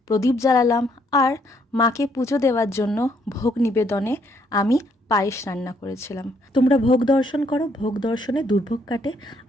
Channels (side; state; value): both; normal; correlation 0.69